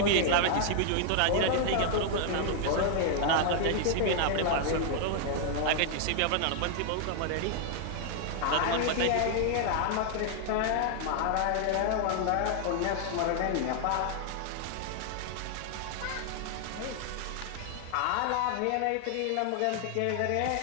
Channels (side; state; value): both; different; correlation 0.00